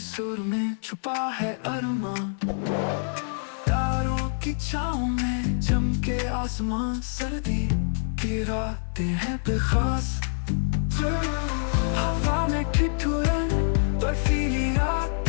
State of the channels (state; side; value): silent; right; digital silence